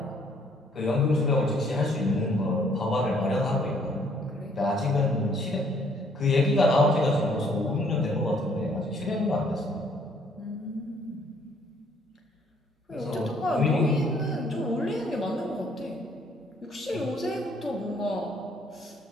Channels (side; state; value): both; normal; correlation 0.63